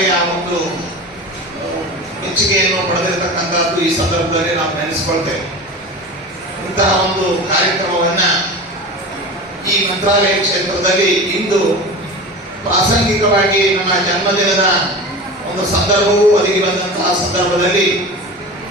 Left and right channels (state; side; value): normal; both; correlation 0.31